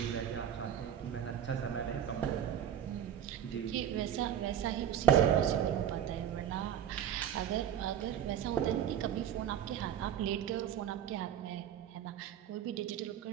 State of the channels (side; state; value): left; quieter; 9.8 dB